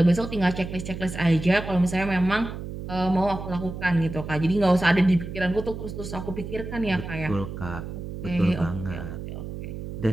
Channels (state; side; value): noise; right; hum, 8 dB below the sound